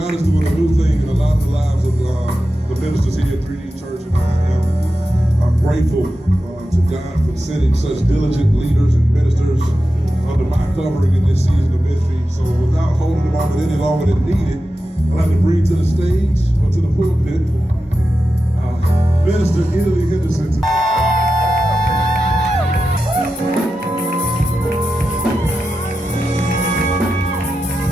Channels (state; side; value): normal; both; correlation 0.91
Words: is doing a new thing in a lot of the lives of the ministers here at 3D Church, and I'm grateful to God for sending such diligent leaders and ministers under my covering in this season of ministry. So without holding the moment any longer than needed, I'd like to bring to the stage or to the pulpit Minister Italy Henderson.